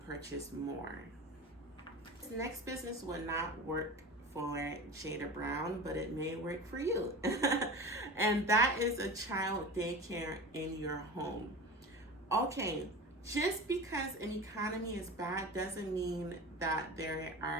purchase more. This next business would not work for Jada Brown, but it may work for you. And that is a child daycare in your home. Okay, just because an economy is bad doesn't mean that there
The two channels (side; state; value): both; normal; correlation 0.32